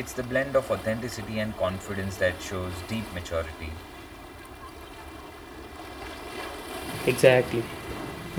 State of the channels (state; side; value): identical; both; correlation 1.00